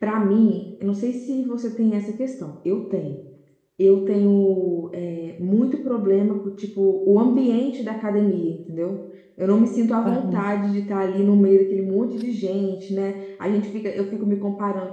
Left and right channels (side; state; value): both; identical; correlation 1.00